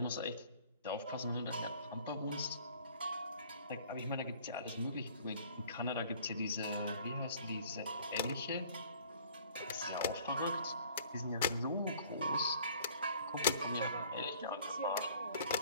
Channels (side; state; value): both; inverted; correlation -0.53